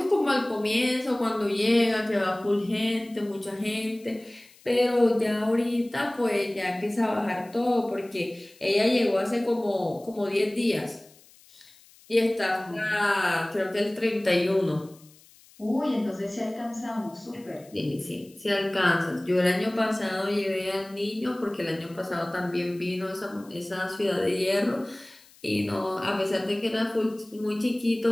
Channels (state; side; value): noise; left; hiss, 26 dB below the sound